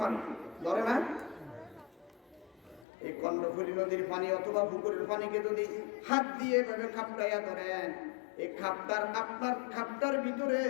মানে ধরে না, এই কর্ণফুলী নদীর পানি অথবা পুকুরের পানিকে যদি হাত দিয়ে এভাবে খাপটাইয়া ধরেন, এই খাপটার আপনার খাপটার ভিতরে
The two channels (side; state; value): right; drops out; at 2.9 s